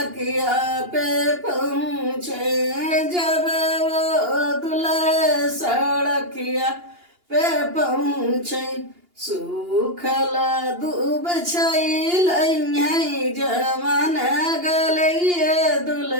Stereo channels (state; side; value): late; left; 2.8 ms